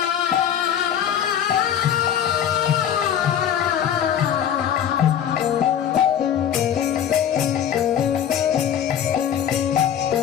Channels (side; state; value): right; quieter; 9.4 dB